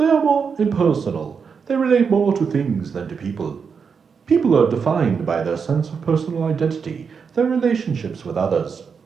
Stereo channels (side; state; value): left; quieter; 6.0 dB